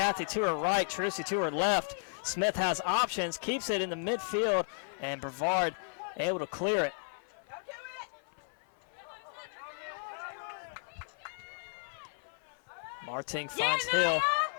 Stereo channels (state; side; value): silent; right; 55 dB below the other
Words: to her right, Trucy to her left. Smith has options, keeps it in the midfield, and Brevard able to clear it. Marting finds Hill.